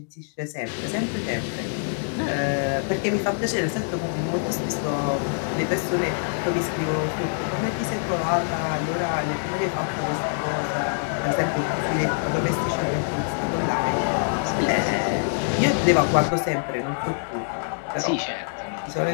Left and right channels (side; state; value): right; silent; digital silence